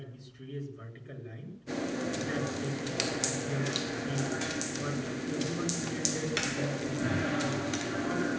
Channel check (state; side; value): identical; both; correlation 1.00